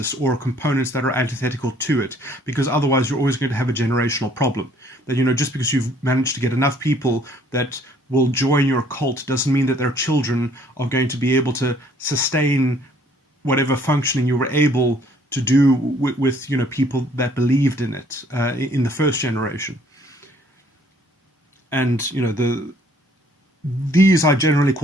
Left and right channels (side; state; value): both; normal; correlation 0.61